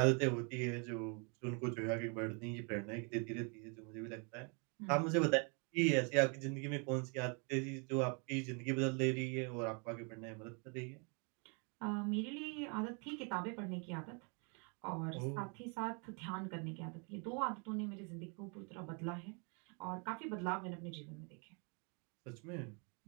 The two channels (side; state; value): left; quieter; 35.9 dB